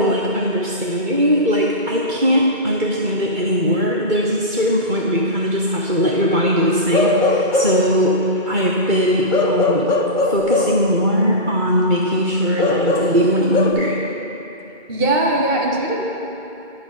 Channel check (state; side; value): late; left; 2.2 ms